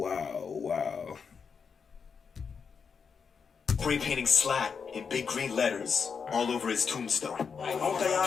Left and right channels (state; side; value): quieter; right; 6.0 dB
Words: Spray painting SLAT in big green letters all over his tombstone. Don't think